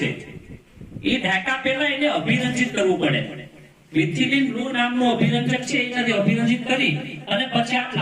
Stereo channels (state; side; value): identical; both; correlation 1.00